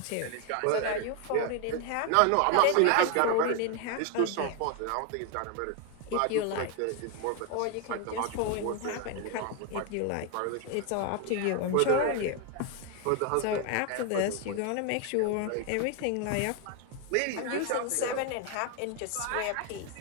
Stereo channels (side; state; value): both; different; correlation 0.01